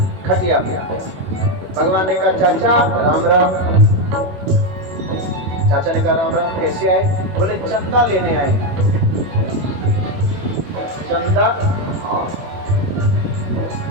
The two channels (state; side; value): late; left; 21 ms